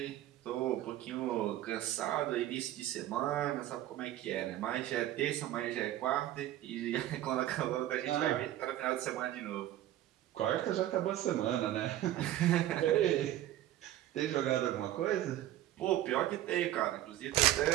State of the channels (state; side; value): quieter; left; 13.5 dB